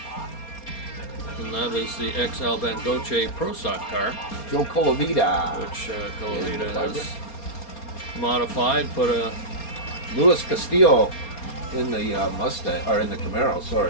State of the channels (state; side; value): late; right; 4.3 ms